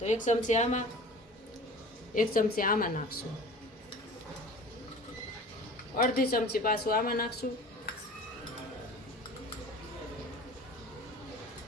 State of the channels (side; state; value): both; normal; correlation 0.42